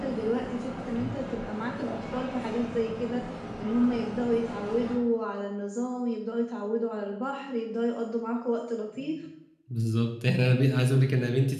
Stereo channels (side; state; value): both; identical; correlation 1.00